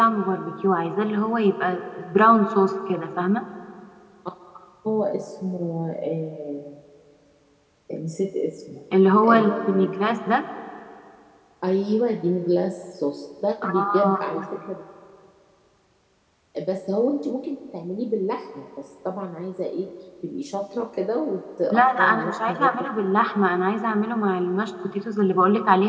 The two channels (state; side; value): identical; both; correlation 1.00